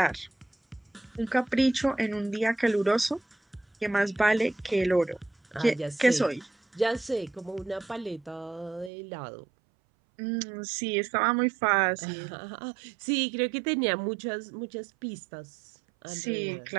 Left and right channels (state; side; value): drops out; left; at 8.9 s